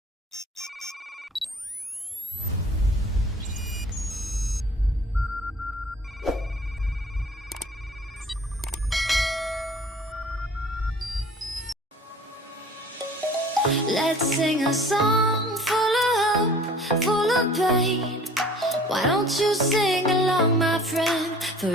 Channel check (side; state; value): both; normal; correlation 0.48